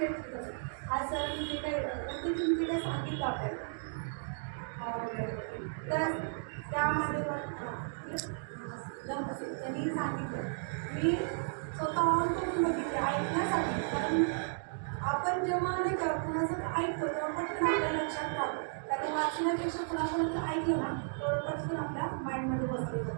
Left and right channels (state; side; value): silent; left; digital silence